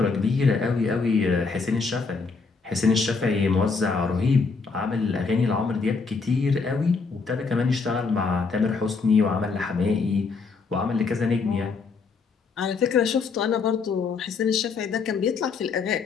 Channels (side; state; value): right; quieter; 4.7 dB